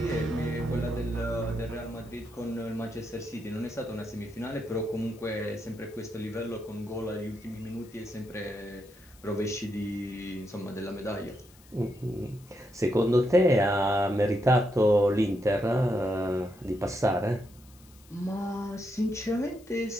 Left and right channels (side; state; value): left; noise; hiss, 26 dB below the sound